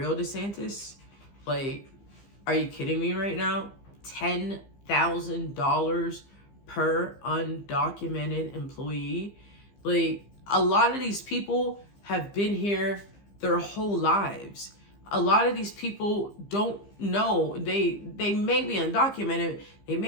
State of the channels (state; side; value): late; right; 15 ms